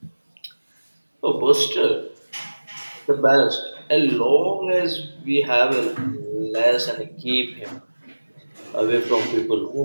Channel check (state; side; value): inverted; both; correlation -1.00